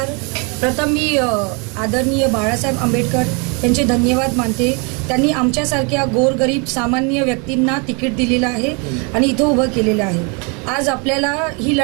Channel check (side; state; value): left; quieter; 33.2 dB